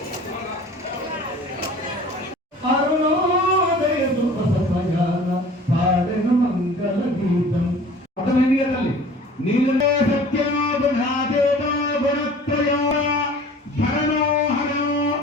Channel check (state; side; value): normal; both; correlation 0.45